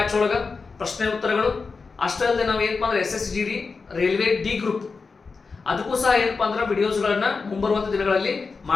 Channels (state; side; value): quieter; right; 4.6 dB